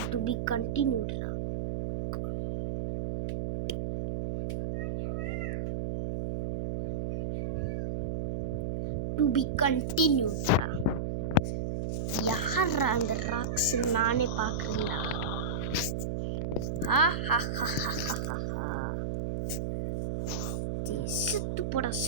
டு பி கண்டினியூட்ரா. டு பி கண்டினியூட்ரா. யாரா அந்த ராக்ஸ்? நானே பார்க்குறேன்டா. செத்து போடா,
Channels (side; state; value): right; noise; hum, 1 dB below the sound